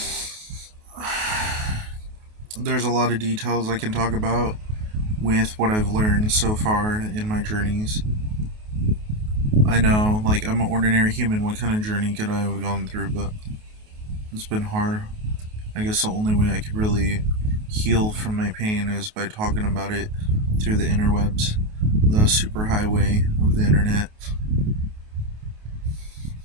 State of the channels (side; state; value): left; late; 28 ms